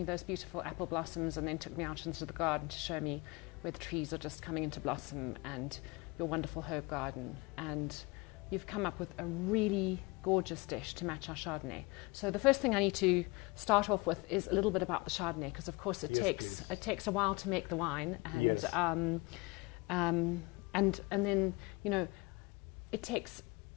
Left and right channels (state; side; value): quieter; right; 25.1 dB